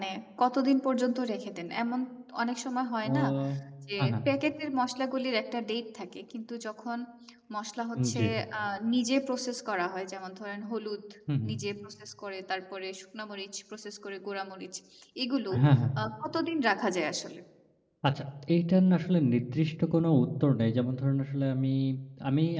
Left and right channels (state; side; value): identical; both; correlation 1.00